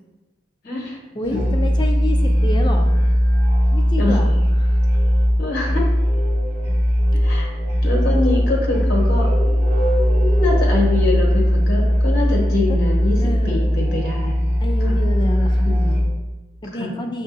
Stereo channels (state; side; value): normal; both; correlation 0.92